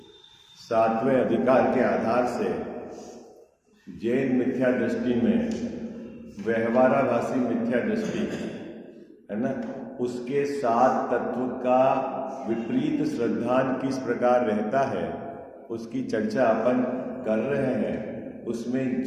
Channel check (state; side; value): identical; both; correlation 1.00